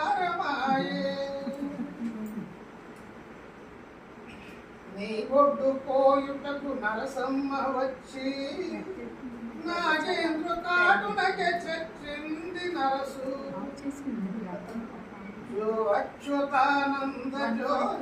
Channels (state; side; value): identical; both; correlation 1.00